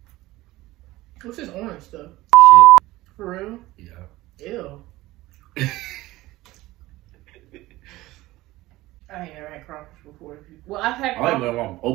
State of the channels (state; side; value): quieter; left; 18.1 dB